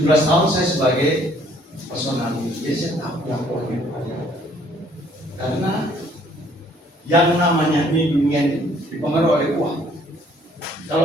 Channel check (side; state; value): both; normal; correlation 0.61